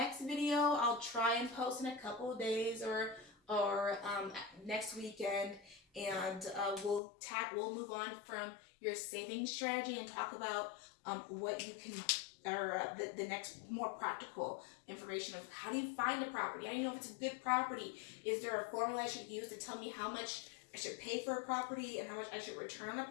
video I'll try and post in a couple of days or next weekend, and we'll move on from your savings strategy and talk about what you can, or the next more practical information of how do you find a property, how do you know if it's a good property, is there a formula I should use to tell me how much I should pay for a property and how much I should return on a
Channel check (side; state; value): right; drops out; at 7.0 s